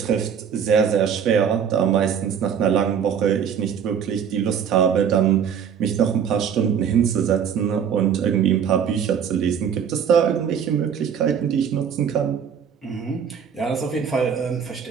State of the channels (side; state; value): left; quieter; 7.7 dB